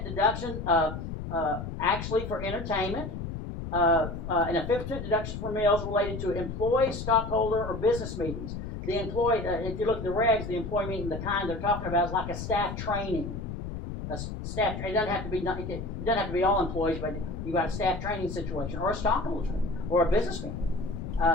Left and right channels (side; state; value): left; noise; rumble, 7 dB below the sound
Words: deduction, actually for entertainment, and a 50% deduction for meals related to employee, stockholder, or business meetings. The employee, if you look at the regs, the employee meeting, the kind they're talking about is like a staff training. It doesn't have to be all employees, but you've got a staff training situation, or a stockholders meeting, or a business meeting.